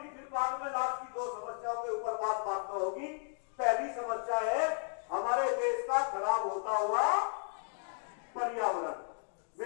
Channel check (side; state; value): right; silent; 55 dB below the other